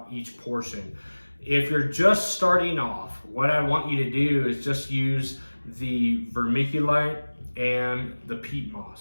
each portion. If you're just starting off, what I want you to do is just use the vermiculite and the peat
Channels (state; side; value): inverted; both; correlation -1.00